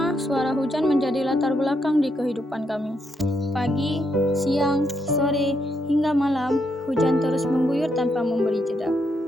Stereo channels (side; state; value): both; normal; correlation 0.78